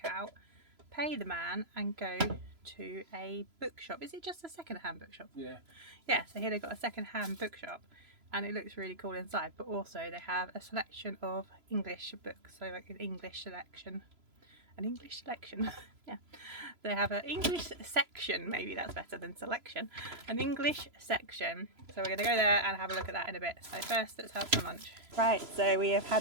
out, pay the man and go to a bookshop. Is it just a second-hand bookshop? Yeah. Yeah, so here they've got a second-hand bookshop and it looks really cool inside, but also they have a selection of English books, so like an English selection. Yeah, they have an English section, maybe that's better than selection, an English section. So we're going to go there and have a look at that in a bit. So first let's have some lunch. Right, so we have had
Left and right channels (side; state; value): left; late; 3.0 ms